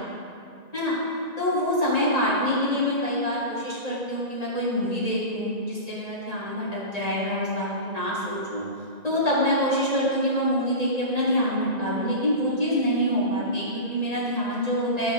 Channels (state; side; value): late; left; 1.9 ms